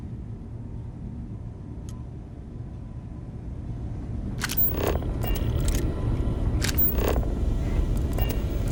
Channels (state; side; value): identical; both; correlation 1.00